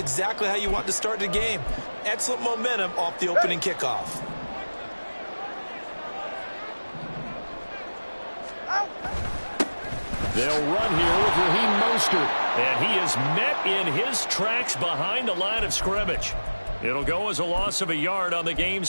how you want to start the game. Excellent momentum off the opening kickoff. They'll run here with Raheem Mostert. And he is met in his tracks behind the line of scrimmage. It'll go as a loss of a yard on the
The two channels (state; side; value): inverted; both; correlation -1.00